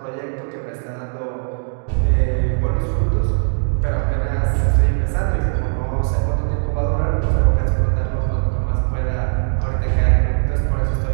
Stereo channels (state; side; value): silent; left; digital silence